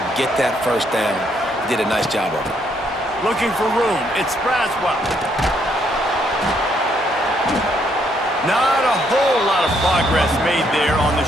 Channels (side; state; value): both; normal; correlation 0.72